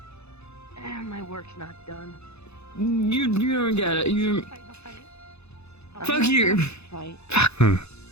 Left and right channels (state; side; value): late; right; 0.80 ms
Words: My work's not done. You don't get it. You. Fuck you. Fight.